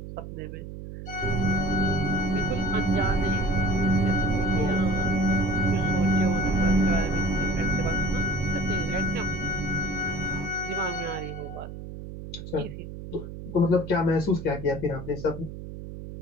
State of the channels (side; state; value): right; noise; hum, 11 dB below the sound